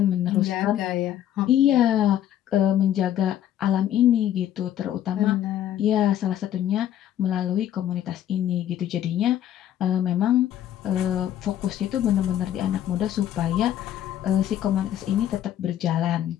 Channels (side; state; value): right; quieter; 11.2 dB